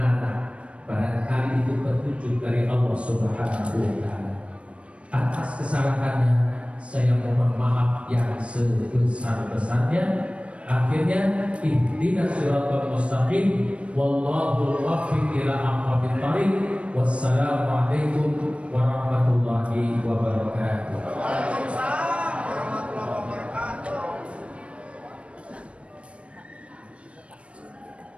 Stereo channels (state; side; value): late; left; 0.061 ms